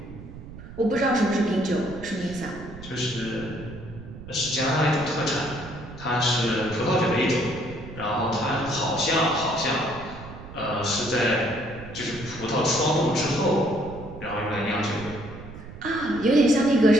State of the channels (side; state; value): right; noise; rumble, 14 dB below the sound